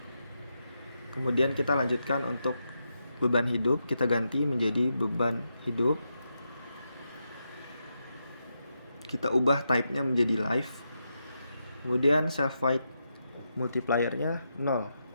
Kemudian kita lanjutkan untuk beban hidup, kita ganti menjadi beban hidup. kita ubah type-nya menjadi live. Kemudian self void multiplier-nya 0.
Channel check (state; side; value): inverted; both; correlation -0.85